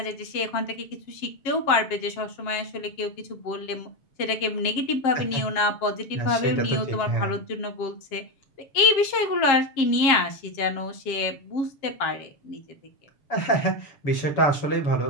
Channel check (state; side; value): late; right; 7.4 ms